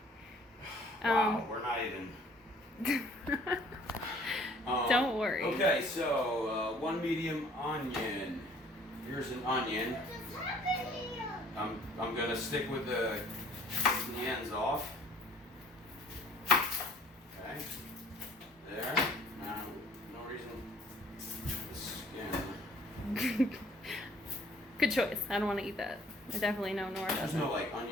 Wow, we're not even. Don't worry. Okay, so 1 medium onion. Here's an onion. I'm gonna stick with the ends off. Okay. There. Now, no reason. The skin. Good choice. I don't want to eat that. I definitely know Nora There's doesn't. no like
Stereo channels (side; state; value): both; normal; correlation 0.56